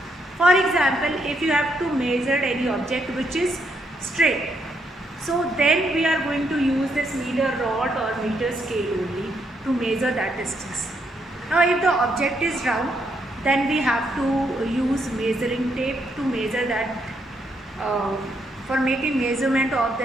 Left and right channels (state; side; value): normal; both; correlation 0.76